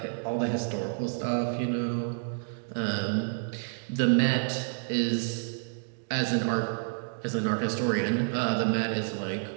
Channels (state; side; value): silent; left; digital silence